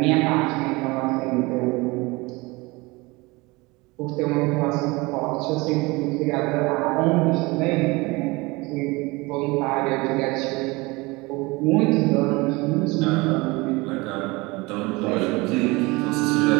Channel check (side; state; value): left; quieter; 23.9 dB